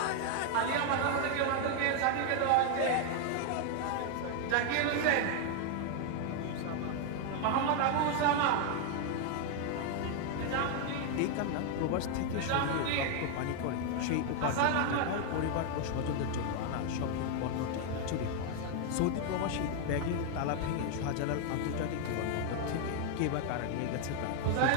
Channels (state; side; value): different; both; correlation 0.00